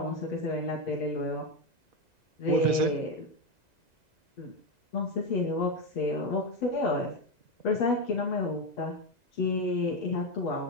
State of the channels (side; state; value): right; late; 2.0 ms